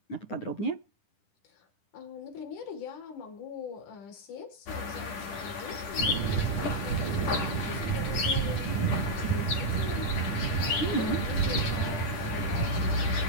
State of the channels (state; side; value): late; right; 11 ms